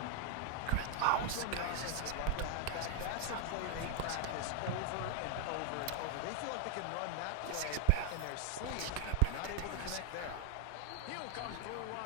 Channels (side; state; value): both; different; correlation 0.01